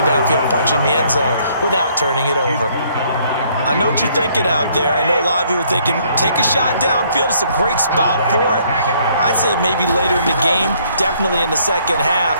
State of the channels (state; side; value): inverted; both; correlation -0.65